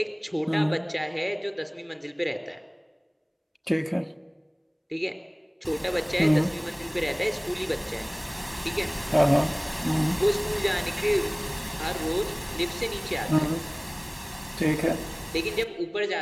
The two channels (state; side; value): identical; both; correlation 1.00